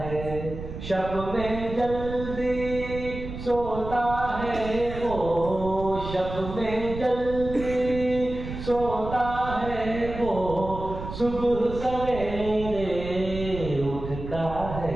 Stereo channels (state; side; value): noise; right; rumble, 9 dB below the sound